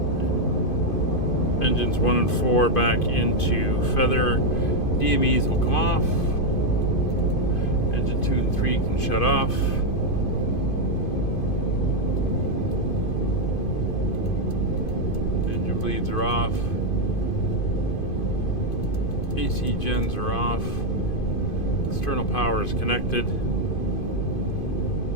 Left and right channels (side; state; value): right; late; 2.5 ms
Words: Engines 1 and 4 back into feather. DMEs will come off. Engine 2 and 3 can shut off. Bleeds are off. AC gens are off. External power is connected.